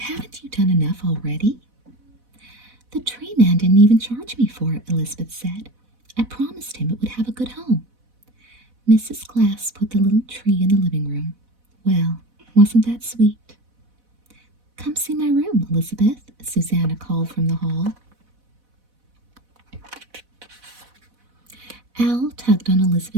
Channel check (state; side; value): late; left; 4.1 ms